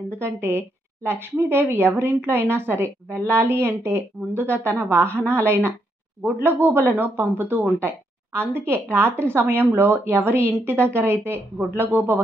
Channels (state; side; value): normal; both; correlation 0.77